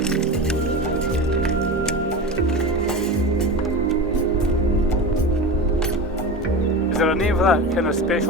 Is there a name for that kind of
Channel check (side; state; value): both; normal; correlation 0.27